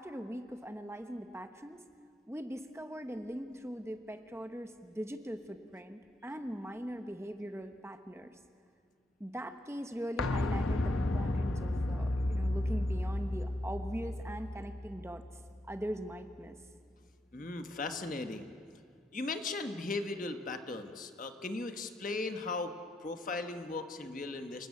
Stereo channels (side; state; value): both; normal; correlation 0.80